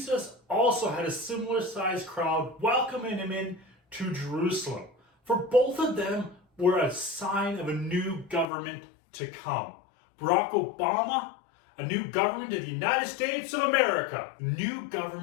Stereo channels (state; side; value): drops out; right; at 8.5 s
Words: also had a similar sized crowd welcoming him in to Jerusalem? For both of them were a sign of a new government to come. Barak Obama, a new government of the United States of America. A new